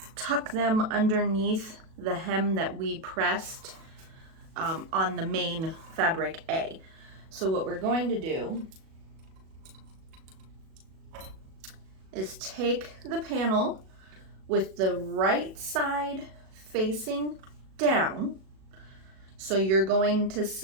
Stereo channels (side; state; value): left; late; 37 ms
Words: tuck them underneath the hem that we pressed on the main fabric A. So what we're going to do is take the panel with the right side facing down. So you're going to